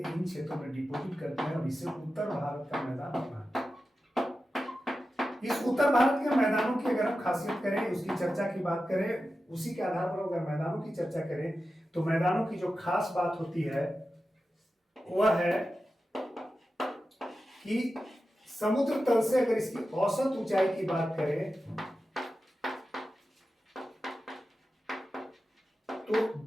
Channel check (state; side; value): normal; both; correlation 0.92